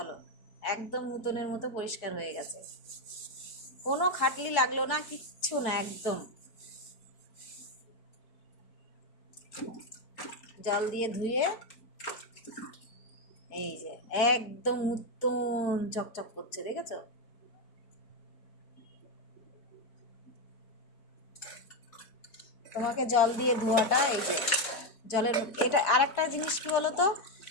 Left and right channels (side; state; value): right; late; 4.4 ms